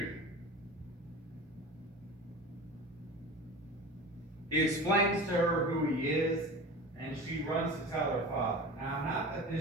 He explains to her who he is, and she runs to tell her father. Now, not that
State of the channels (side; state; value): both; normal; correlation 0.33